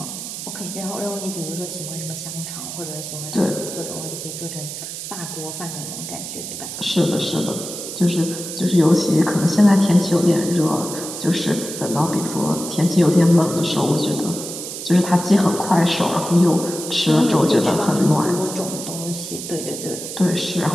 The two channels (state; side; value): noise; right; hiss, 8 dB below the sound